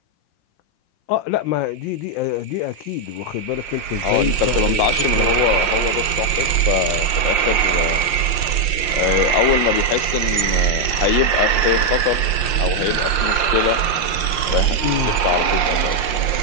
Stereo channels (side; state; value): right; late; 5.7 ms